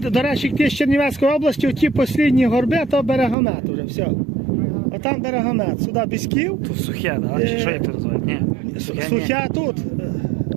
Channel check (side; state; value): left; drops out; at 3.4 s